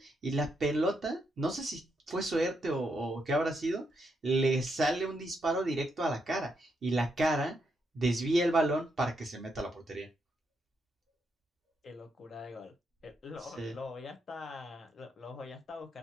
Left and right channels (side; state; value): both; normal; correlation 0.80